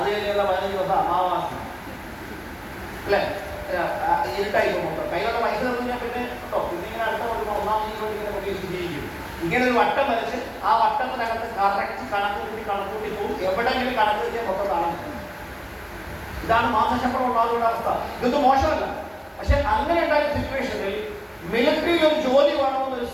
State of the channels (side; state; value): both; identical; correlation 1.00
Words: കഴിഞ്ഞുള്ള 15 ദിവസം അമാവാസി, അല്ലേ? ഇരുട്ടായി പോകുമ്പോൾ കയ്യിലുള്ള പൈസ തന്നില്ല പിന്നെ കേട്ടോ, പിന്നെ ഇങ്ങനെ അടുത്ത കൊടുക്കുമ്പോൾ 1-ാം തീയതി ഇങ്ങനെ പ്രതീക്ഷിച്ചിരിക്കും. ഇങ്ങനെ ഒരു വട്ടം വരച്ച് ആ വട്ടത്തിനകത്ത് കറക്റ്റ് കണക്കൂട്ടി പോകും. എവിടെയെങ്കിലും കണക്ക് വെച്ചാൽ മൊത്തം കാണാൻ. ഇതാണ് മാസശമ്പളം ഉണ്ടാകുന്ന അവസ്ഥ. ഇതൊന്നും മോശമല്ല. പക്ഷെ അങ്ങനെ ഉണ്ടായ സിറ്റുവേഷനിൽ മിലിറ്ററിയിൽ ഒരു ജോലി വേണമെന്നൊരു